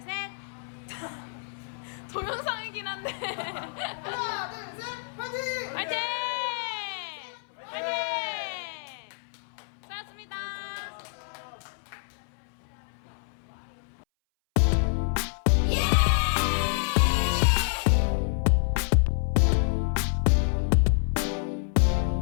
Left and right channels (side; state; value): right; silent; 59 dB below the other